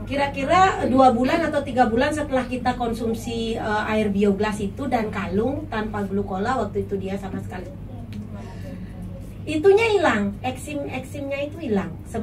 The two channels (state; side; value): identical; both; correlation 1.00